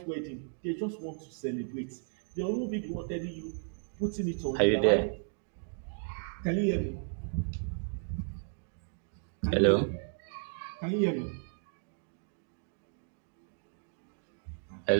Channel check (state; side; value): silent; left; 55 dB below the other